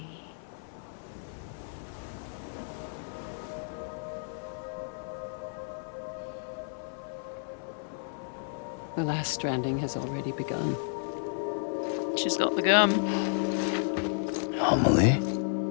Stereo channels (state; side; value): silent; right; 57 dB below the other